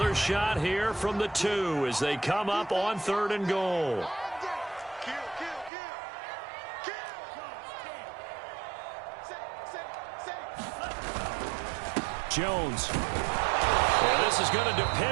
shot here from the 2 as they come up on 3rd and goal. Jones. Well, this is going to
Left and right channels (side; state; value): left; drops out; at 5.7 s